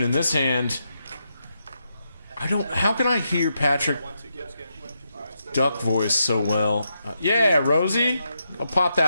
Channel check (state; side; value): inverted; both; correlation -0.83